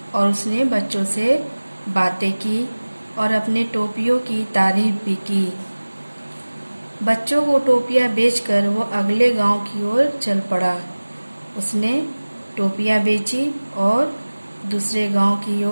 उसने बच्चों से बातें की और अपने टोपियों की तारीफ भी की। बच्चों को टोपियां बेचकर वो अगले गांव की ओर चल पड़ा। उसने टोपियां बेची और दूसरे गांव की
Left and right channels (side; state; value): both; inverted; correlation -1.00